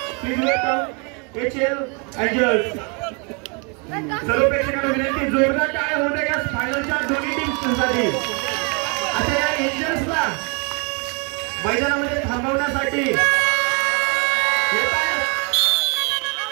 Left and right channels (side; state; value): left; quieter; 33.7 dB